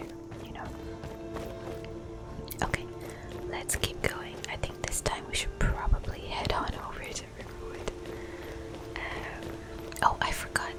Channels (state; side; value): identical; both; correlation 1.00